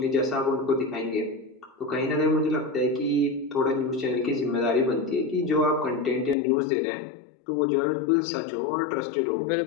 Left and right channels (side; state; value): right; drops out; at 6.4 s